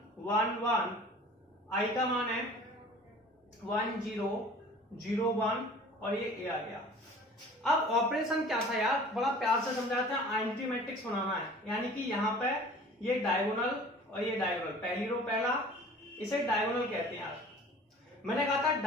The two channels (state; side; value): normal; both; correlation 0.46